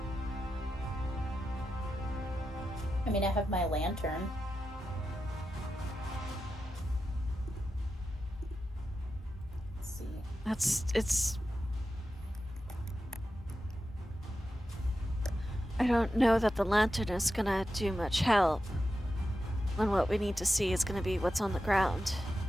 I mean, I have my lantern. Let's see. It's I don't know that the lantern is gonna do much help when what we need to see is gonna be what's on the ground.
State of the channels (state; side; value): normal; both; correlation 0.90